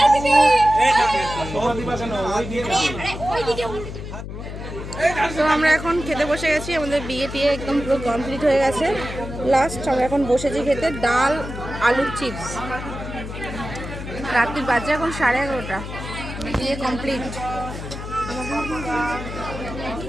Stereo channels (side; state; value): left; noise; hum, 8 dB below the sound